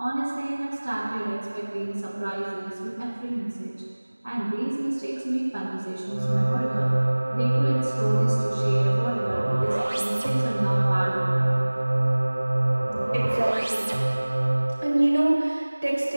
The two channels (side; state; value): both; inverted; correlation -1.00